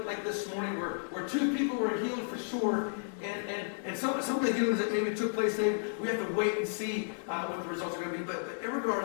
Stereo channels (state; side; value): silent; right; 56 dB below the other